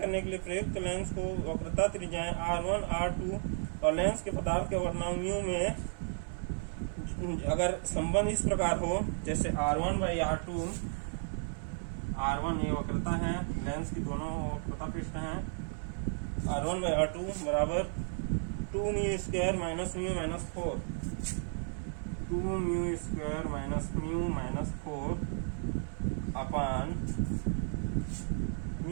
के लिए प्रयुक्त लेंस को वक्रता त्रिज्याएं R1, R2 और लेंस के पदार्थ के वर्णांक म्यू में अगर संबंध इस प्रकार हो, जैसे R1/R2, R1 ये वक्रता है, लेंस की दोनों वक्रता पृष्ठ हैं, R1/R2 बराबर 2μ² minus mu minus 4, 2μ² minus mu minus 4 upon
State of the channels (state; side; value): silent; left; 55 dB below the other